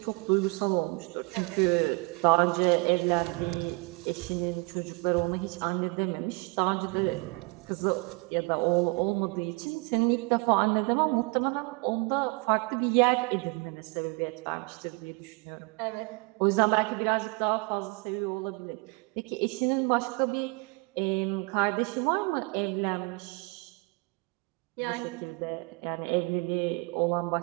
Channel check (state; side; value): quieter; left; 29.0 dB